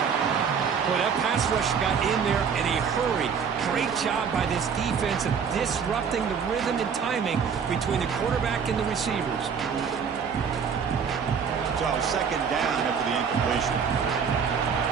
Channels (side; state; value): left; quieter; 6.6 dB